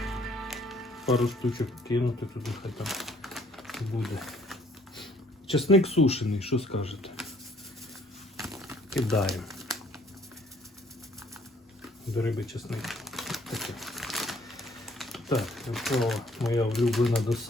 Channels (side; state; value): both; normal; correlation 0.62